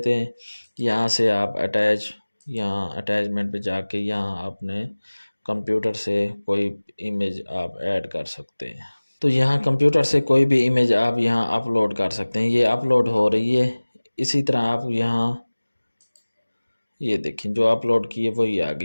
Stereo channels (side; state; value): both; inverted; correlation -1.00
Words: हैं। यहाँ से आप अटैच, यहाँ अटैचमेंट पे जाके यहाँ आपने कंप्यूटर से कोई इमेज आप ऐड कर सकते हैं। तो यहाँ कंप्यूटर से कोई भी इमेज आप यहाँ अपलोड कर सकते हैं। ये अपलोड हो रही है। इसी तरह आप यहाँ ये देखें, जो अपलोड की है वही आ